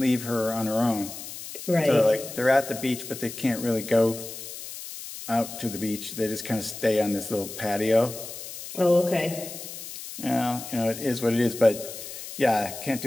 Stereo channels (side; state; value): left; noise; hiss, 11 dB below the sound